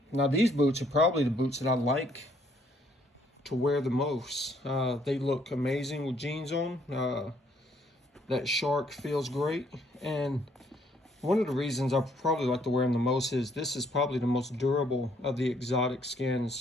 these boots are probably the boots that I like to wear the most. They look amazing with jeans on. That Shark feels great. And one of the reasons I probably like to wear them the most is this is probably the most durable of the exotic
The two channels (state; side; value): normal; both; correlation 0.67